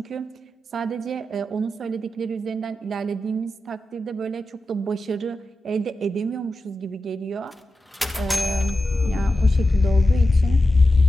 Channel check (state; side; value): normal; both; correlation 0.91